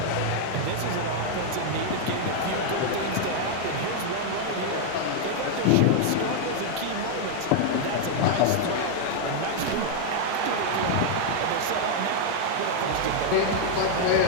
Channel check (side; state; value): both; different; correlation -0.01